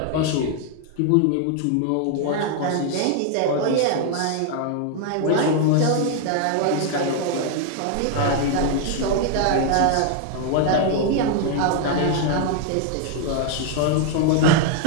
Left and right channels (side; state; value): both; different; correlation 0.00